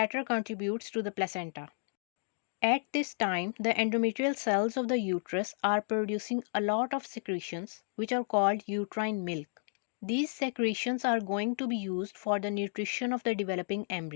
contributes to the placenta. At this time, the endometrial cells of the uterus are producing a lot of secretions which are called uterine milk. These secretions are going to be used for the nutrition of the developing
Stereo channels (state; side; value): silent; right; digital silence